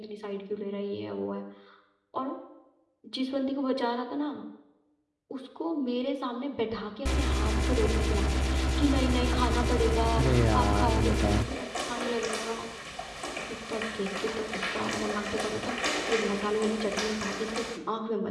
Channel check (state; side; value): identical; both; correlation 1.00